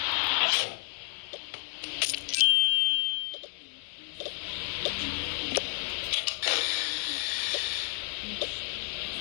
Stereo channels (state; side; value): silent; right; digital silence